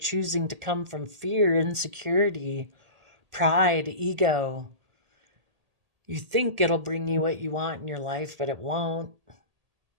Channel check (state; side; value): late; left; 1.8 ms